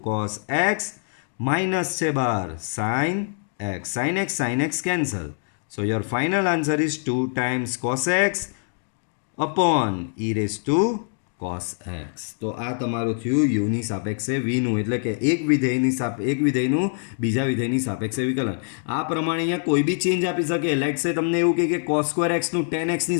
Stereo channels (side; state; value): right; silent; digital silence